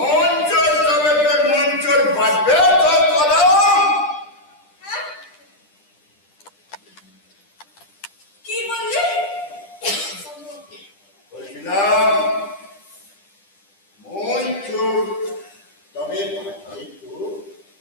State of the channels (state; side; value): late; right; 10 ms